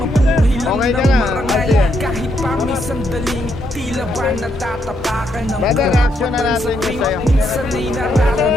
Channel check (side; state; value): both; normal; correlation 0.77